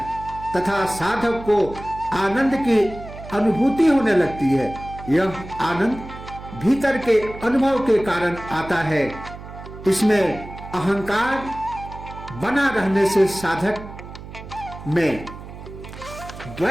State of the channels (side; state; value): right; noise; hum, 14 dB below the sound